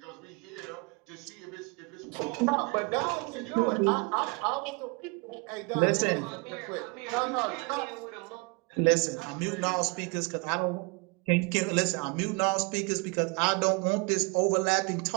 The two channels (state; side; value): quieter; left; 29.8 dB